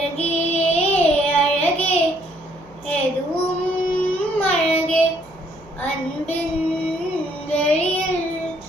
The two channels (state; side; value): noise; right; hum, 26 dB below the sound